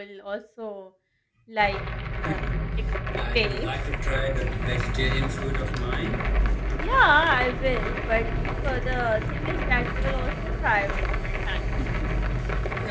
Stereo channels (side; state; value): both; identical; correlation 1.00